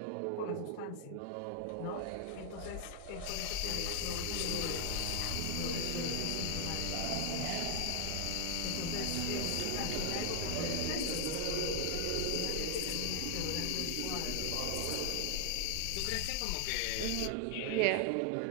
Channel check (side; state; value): both; different; correlation 0.00